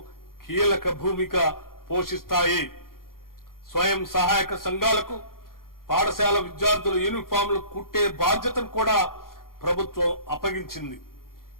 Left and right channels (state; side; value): late; right; 0.92 ms